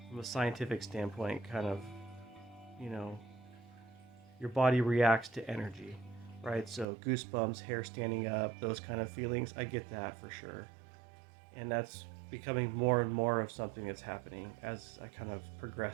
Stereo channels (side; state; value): left; drops out; at 6.9 s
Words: a scientific standpoint, kind of, your body reacts to energy, right? So goosebumps, hair standing up, those kind of feelings, I get that for sure. And that's becoming more and more of something that's happening as I kind of